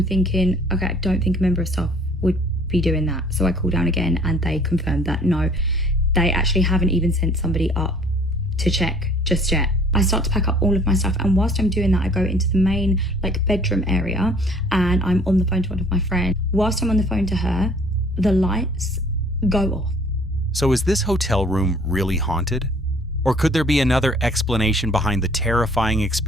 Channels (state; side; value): normal; both; correlation 0.55